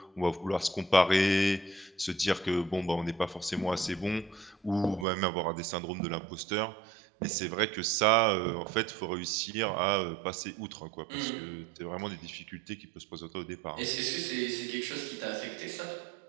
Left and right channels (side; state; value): left; drops out; at 5.1 s